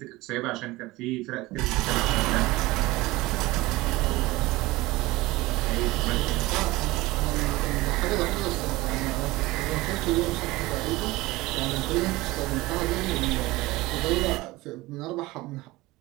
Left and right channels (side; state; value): left; quieter; 20.0 dB